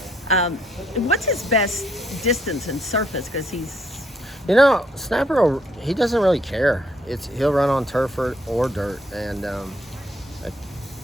what's his best distance and surface? Because he's... Snapper, he doesn't really care. He'll run on turf or dirt. And,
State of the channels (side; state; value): both; normal; correlation 0.70